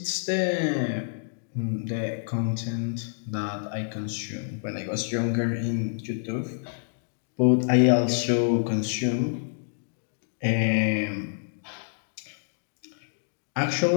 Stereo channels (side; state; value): right; silent; digital silence